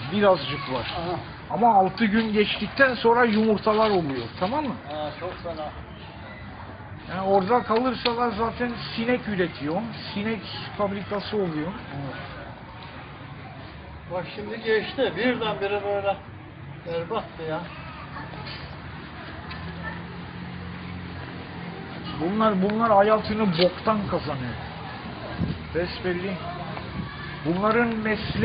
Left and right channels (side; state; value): both; identical; correlation 1.00